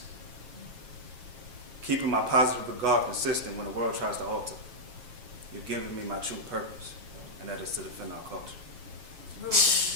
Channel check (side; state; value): left; late; 8.1 ms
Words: Keeping my positive regard consistent when the world tries to alter. You've given me my true purpose, and that is to defend our culture.